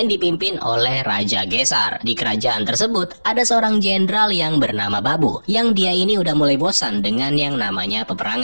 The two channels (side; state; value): both; inverted; correlation -1.00